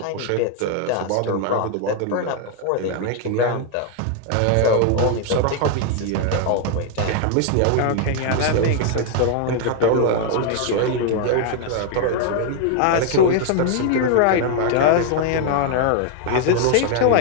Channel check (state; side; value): different; both; correlation 0.00